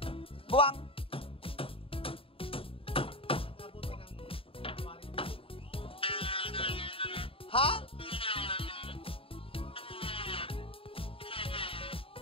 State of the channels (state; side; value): late; right; 0.27 ms